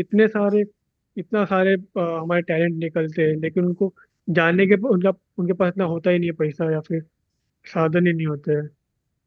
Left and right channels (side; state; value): both; identical; correlation 1.00